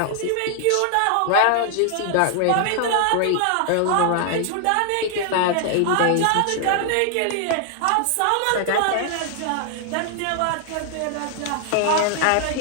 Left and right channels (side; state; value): both; different; correlation 0.00